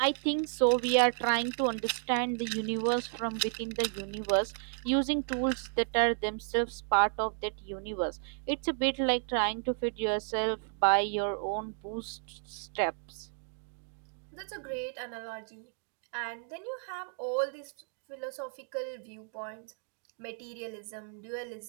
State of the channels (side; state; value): left; silent; 56 dB below the other